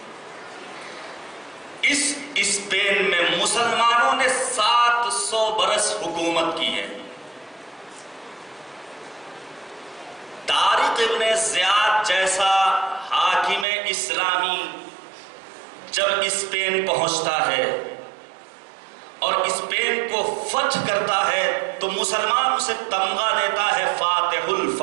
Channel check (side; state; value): left; drops out; at 13.7 s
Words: اس اسپین میں مسلمانوں نے 700 برس حکومت کی ہے۔ طارق ابن زیاد جیسا حاکم اسلامی جب اسپین پہنچتا ہے اور اسپین کو فتح کرتا ہے تو مسلمان اسے تمغہ دیتا ہے، فاتح